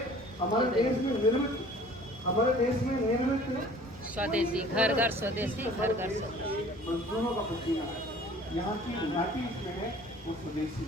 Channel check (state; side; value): normal; both; correlation 0.49